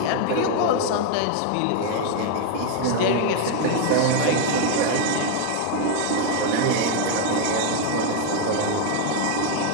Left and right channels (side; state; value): both; different; correlation 0.01